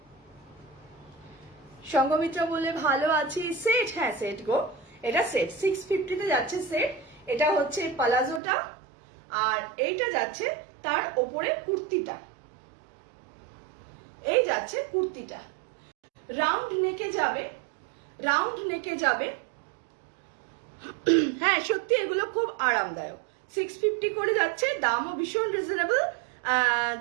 সংঘমিত্রা বলে ভালো আছি। সেট, হ্যাঁ সেট গো, এটা সেট 650 তে যাচ্ছে সেট। এটা হচ্ছে পালাজোটা, আর এইটা যাচ্ছে তার ওপরে কুর্তিটা, এই যাচ্ছে কুর্তিটা, রাউন্ড নেকে যাবে। হ্যাঁ সত্যি এগুলো খুব আরামদায়ক, 650 করে যাচ্ছে, দামও ভীষণ রিজনেবল।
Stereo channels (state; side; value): drops out; left; at 8.4 s